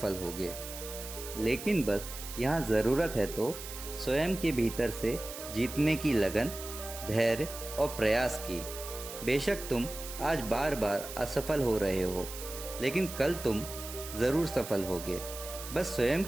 होगे। लेकिन बस यहाँ ज़रूरत है तो स्वयं के भीतर से जीतने की लगन, धैर्य और प्रयास की। बेशक तुम आज बार बार असफल हो रहे हो, लेकिन कल तुम ज़रूर सफल होगे। बस स्वयं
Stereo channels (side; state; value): right; noise; hiss, 10 dB below the sound